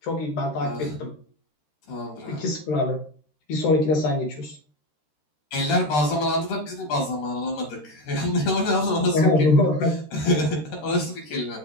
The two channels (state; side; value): late; right; 13 ms